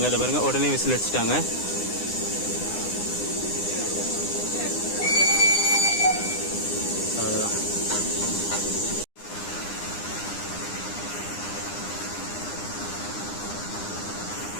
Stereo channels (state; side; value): late; right; 9.8 ms